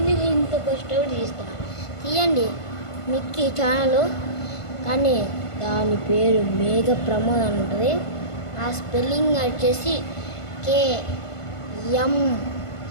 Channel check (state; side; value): late; right; 1.5 ms